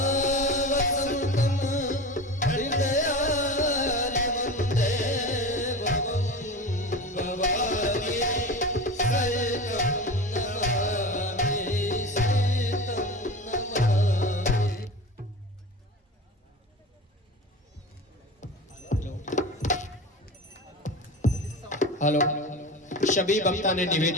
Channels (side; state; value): both; normal; correlation 0.30